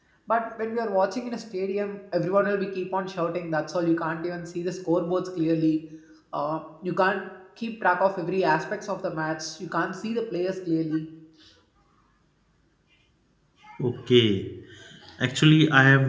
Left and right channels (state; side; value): identical; both; correlation 1.00